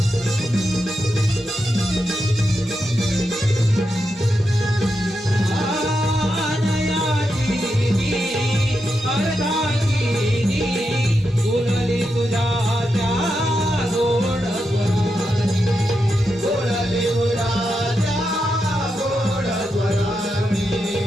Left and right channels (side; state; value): both; normal; correlation 0.86